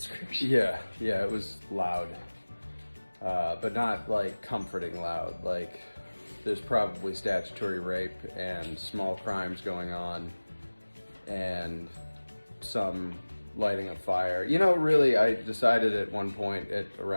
Yeah, it was loud. But not like comforting loud. Like there's probably statutory rape and small crimes going on and some lighting of fire. You know, really, I decided at one point at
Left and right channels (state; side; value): inverted; both; correlation -1.00